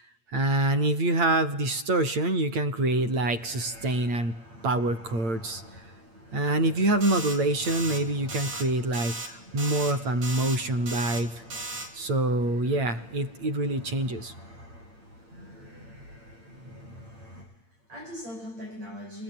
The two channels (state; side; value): late; left; 8.7 ms